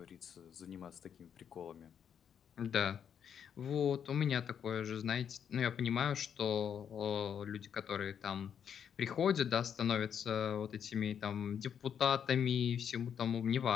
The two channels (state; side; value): quieter; right; 8.2 dB